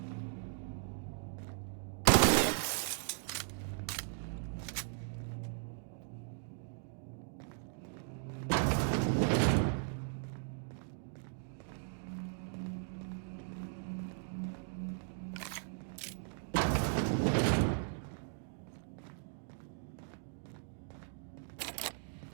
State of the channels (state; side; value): silent; left; digital silence